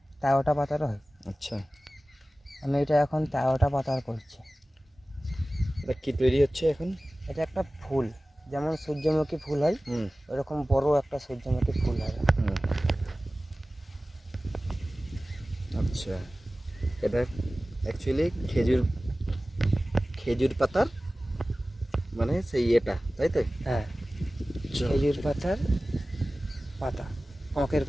13টা পাতারও হয়। আচ্ছা, আমি এটা এখন 13টা পাতার করছি। এটা কি তৈরি হচ্ছে এখন? এটা একটা ফুল, যেমন সূর্যমুখী ফুল হয় হুম ওরকম বড় একটা সূর্যমুখী ফুল হবে। হুম আচ্ছা, এটা অ্যাকচুয়ালি খেজুর পাতার মানে সেই এটা, তাই তো? হ্যাঁ, খেজুর পাতার পাতা, আঁখের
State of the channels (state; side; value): normal; both; correlation 0.97